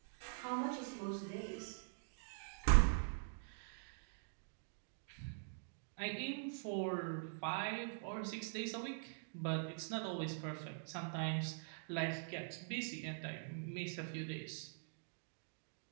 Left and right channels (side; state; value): left; silent; digital silence